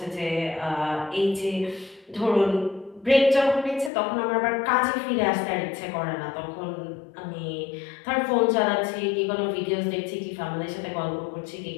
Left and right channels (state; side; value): drops out; right; at 3.9 s